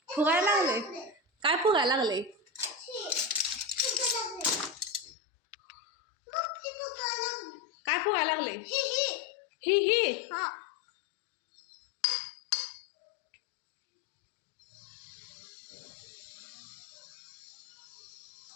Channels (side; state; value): right; drops out; at 5.1 s